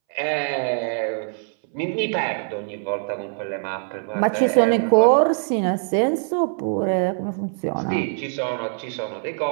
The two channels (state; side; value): silent; left; 63 dB below the other